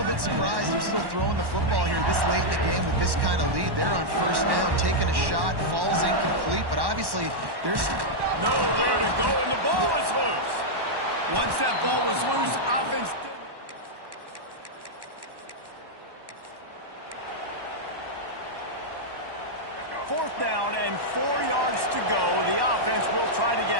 bit surprised they're still throwing the football here this late in the game with this kind of lead. They're on 1st down, taking a shot, falls incomplete, but obviously there's nowhere to go, and the ball is loose. Once that ball was loose, offense didn't. 4th down and 4 yards to go. The offense will try to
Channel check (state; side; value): late; left; 1.1 ms